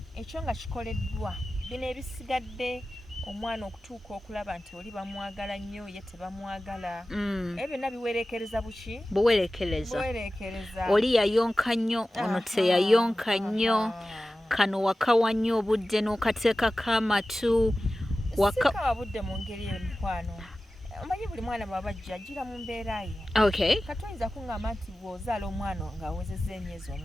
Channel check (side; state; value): both; normal; correlation 0.95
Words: ekyo nga kikoleddwa bino ebisigadde omwana okutuuka okulaba nti oli bamwagala nnyo ye tebamwagala. Ebyo byonna biwerekereza buki? Buwerekereza. Oli yayonka nnyo ono teyayonka nnyo. Kano wakawa nnyo obudde n'okateekako amatu. Sikawa budde mu ngeri eyo mukwano. omanyi buli mwana bw'abajja ajjira mu mbeera ye. Okay. Katoyinza kuŋŋamba nti bw'ozaala omwana ng'awezezza emyezi